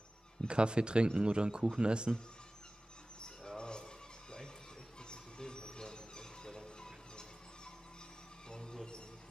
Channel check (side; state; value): both; normal; correlation 0.97